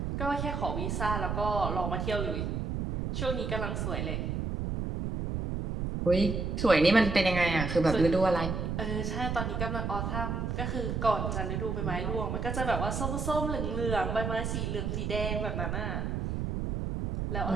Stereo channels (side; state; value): right; noise; rumble, 2 dB below the sound